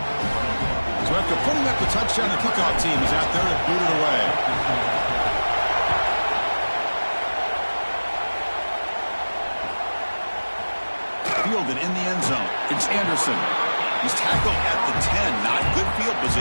So after putting up the touchdown, the kickoff team is out there to boot it away. Fielded in the end zone. It's Anderson. He's tackled at the 10. Not good field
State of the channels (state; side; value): inverted; both; correlation -1.00